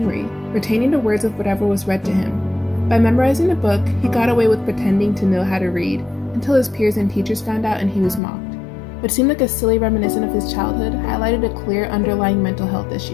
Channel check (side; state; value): right; drops out; at 8.2 s